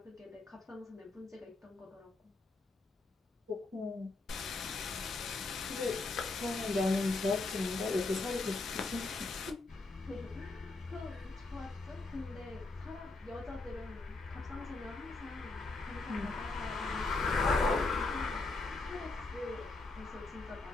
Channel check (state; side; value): quieter; right; 3.4 dB